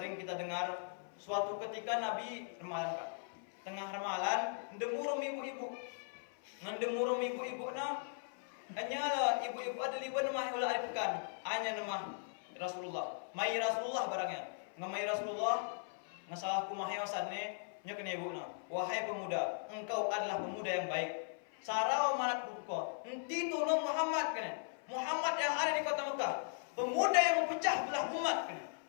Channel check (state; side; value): silent; right; 52 dB below the other